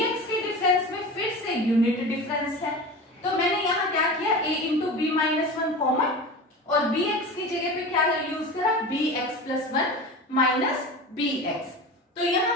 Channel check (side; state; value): both; normal; correlation 0.31